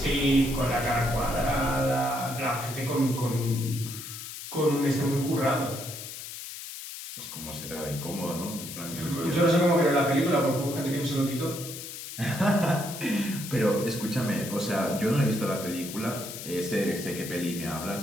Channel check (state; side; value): noise; left; hiss, 10 dB below the sound